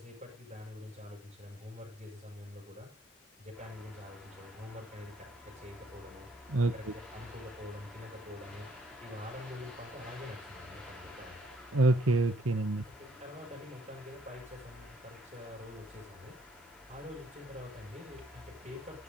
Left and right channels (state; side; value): normal; both; correlation 0.67